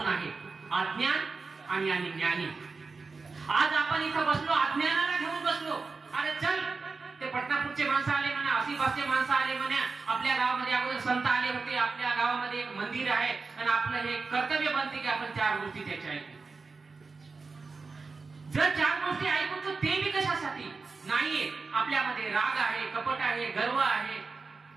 आहे, अज्ञान आणि ज्ञानी. आज आपण इथं बसलो, अज्ञानाला घेऊन बसलो. अरे चल, ते पटनापूरचे माणसं आले म्हणा, आसिफासचे माणसं आले म्हणा, आपल्या गावामध्ये अगोदर संत आले होते, आपल्या गावामध्ये एक मंदिर आहे आणि आपलं हे कर्तव्य बनते की आपण 4 गोष्टी त्याच्या ऐकू. जर 4 गोष्टी ऐकू तर ते बी कशासाठी नाहीये? आपल्यामध्ये राग आहे, कपट आहे, गर्व आहे,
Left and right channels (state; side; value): quieter; left; 4.3 dB